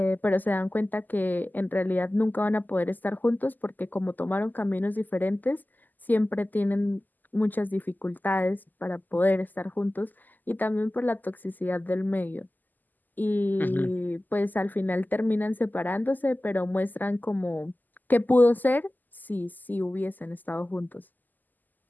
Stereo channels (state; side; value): late; right; 0.085 ms